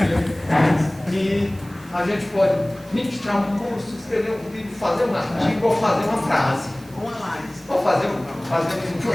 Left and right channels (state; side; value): noise; right; hiss, 25 dB below the sound